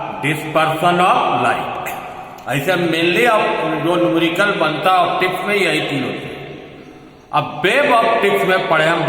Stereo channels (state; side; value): identical; both; correlation 1.00